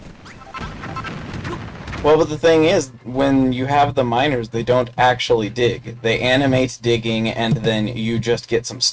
Well, but the thing is, when you have the miners, they don't actually dig. They animate digging, and then you just get some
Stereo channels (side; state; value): both; identical; correlation 1.00